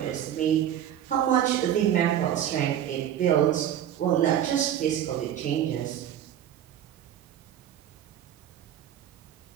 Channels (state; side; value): quieter; left; 10.6 dB